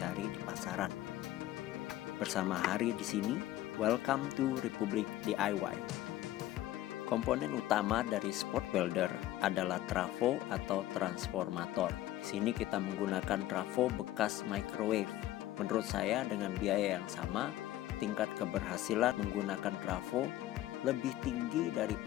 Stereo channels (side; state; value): right; quieter; 14.5 dB